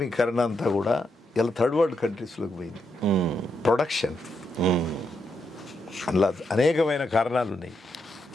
అంతా కూడా ఇలా థర్డ్ వరల్డ్ కంట్రీస్లోకి పోయింది. ప్రొడక్షన్ అందులో అనేకమైన కారణాలు ఉన్నాయి.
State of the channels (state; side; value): normal; both; correlation 0.81